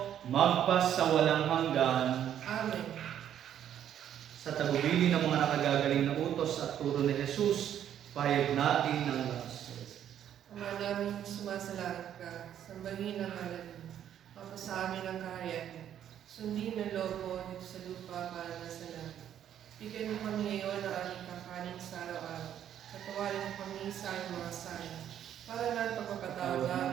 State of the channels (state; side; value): quieter; left; 10.2 dB